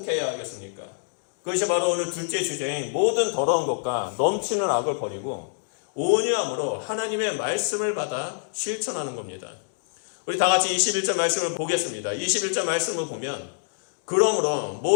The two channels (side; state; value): right; silent; digital silence